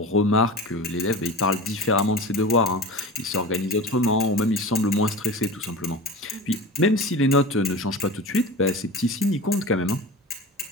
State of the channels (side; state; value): both; normal; correlation 0.32